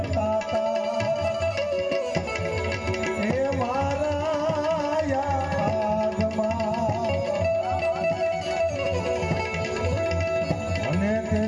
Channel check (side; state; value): both; identical; correlation 1.00